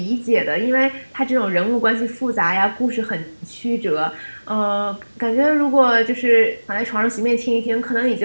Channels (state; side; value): inverted; both; correlation -1.00